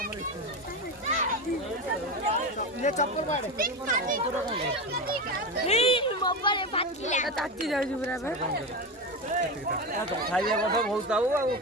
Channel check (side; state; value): both; normal; correlation 0.19